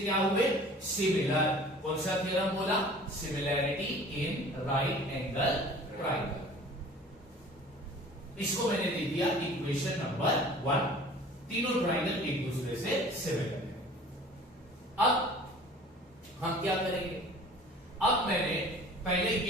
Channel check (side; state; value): both; normal; correlation 0.46